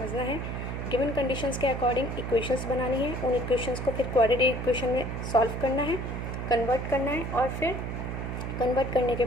है, गिवन कंडीशंस के अकॉर्डिंग इक्वेशंस बनानी है, उन इक्वेशंस को फिर क्वाड्रेटिक इक्वेशन में सॉल्व करना है, कन्वर्ट करना है और फिर कन्वर्ट करने के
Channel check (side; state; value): right; noise; hum, 4 dB below the sound